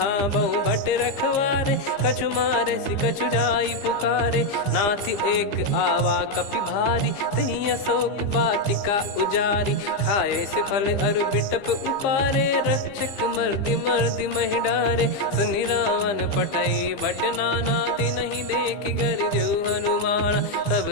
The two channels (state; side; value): late; right; 15 ms